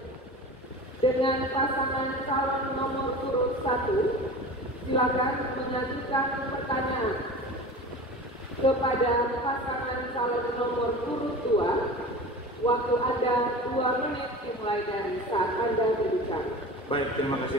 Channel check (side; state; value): both; normal; correlation 0.35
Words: dengan pasangan calon nomor urut 1. Silakan mengajukan pertanyaan kepada pasangan calon nomor urut 2. Waktu Anda 2 menit dimulai dari saat Anda berbicara. Baik, terima